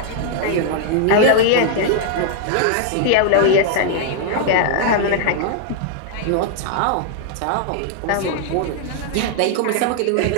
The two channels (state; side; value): different; both; correlation -0.01